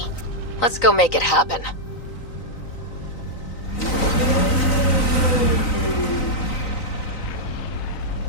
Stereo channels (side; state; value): right; late; 3.9 ms